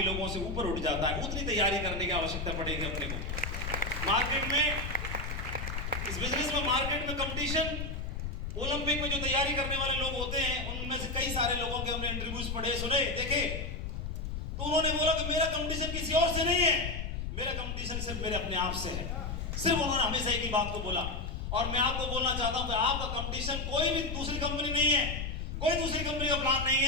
लोगों से ऊपर उठ जाता है। उतनी तैयारी करने की आवश्यकता पड़ेगी अपने को। मार्केट में, इस बिजनेस में मार्केट में कंपटीशन, ओलंपिक में जो तैयारी करने वाले लोग होते हैं उनमें से कई सारे लोगों के हमने इंटरव्यूज पढ़े, सुने, देखे, तो उन्होंने बोला कि मेरा कंपटीशन किसी और से नहीं है, मेरा कंपटीशन सिर्फ मेरे अपने आप से है। सिर्फ उन्होंने हमेशा एक ही बात को बोला। और मैं आपको बोलना चाहता हूं कि आपका कंपटीशन कोई भी दूसरी कंपनी नहीं है, कोई दूसरी कंपनी का प्लान नहीं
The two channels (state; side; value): noise; left; rumble, 4 dB below the sound